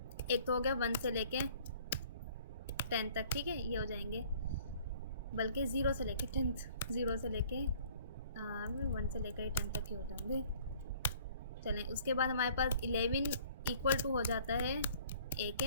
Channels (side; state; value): both; inverted; correlation -0.55